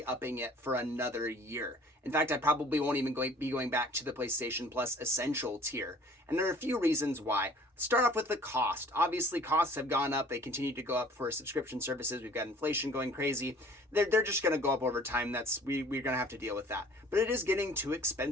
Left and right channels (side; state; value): both; normal; correlation 0.51